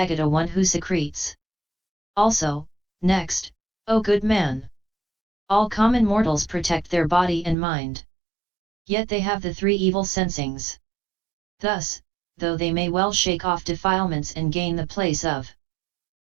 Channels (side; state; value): left; drops out; at 7.6 s